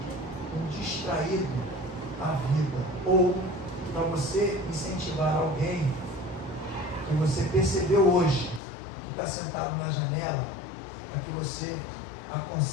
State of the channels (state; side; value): drops out; right; at 8.6 s